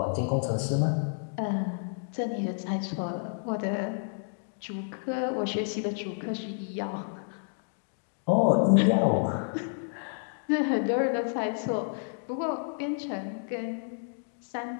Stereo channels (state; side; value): silent; right; digital silence